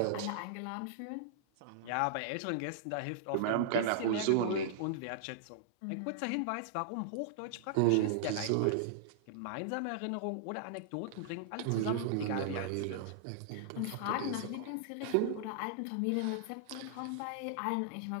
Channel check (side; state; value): both; different; correlation -0.01